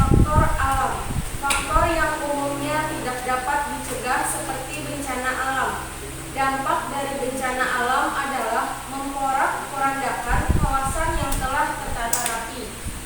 alam. Faktor yang umumnya tidak dapat dicegah seperti bencana alam. Dampak dari bencana alam adalah memporak-porandakan kawasan yang telah tertata rapi,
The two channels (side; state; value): both; identical; correlation 1.00